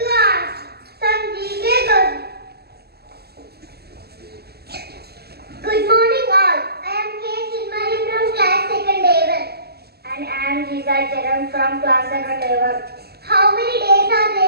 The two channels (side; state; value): left; late; 0.46 ms